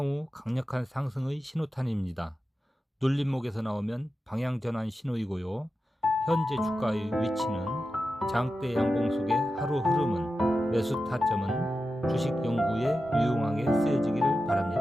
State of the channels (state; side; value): normal; both; correlation 0.91